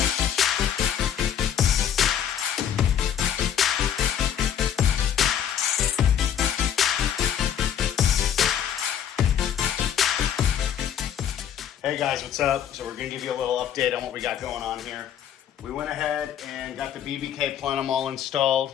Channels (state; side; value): quieter; right; 9.4 dB